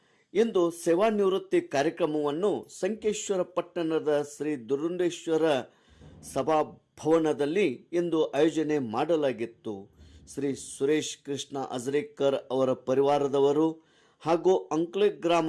ಇಂದು ಸೇವಾ ನಿವೃತ್ತಿ ಕಾರ್ಯಕ್ರಮವನ್ನು ಸಂಕೇಶ್ವರ ಪಟ್ಟಣದ ಶ್ರೀ ದುರುಂಡೇಶ್ವರ ಸಭಾಭವನದಲ್ಲಿ ಇಂದು ಆಯೋಜನೆ ಮಾಡಲಾಗಿತ್ತು. ಶ್ರೀ ಸುರೇಶ್ ಕೃಷ್ಣ ಅಜರೇಕರ್ ಅವರ ಪರಿವಾರದವರು ಹಾಗೂ ಅಂಕ್ಲೆ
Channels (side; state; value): both; identical; correlation 1.00